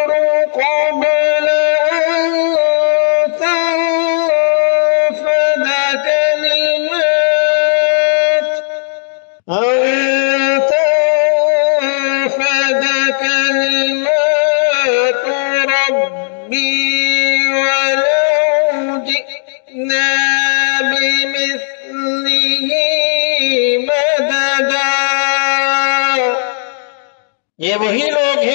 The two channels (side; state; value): right; silent; digital silence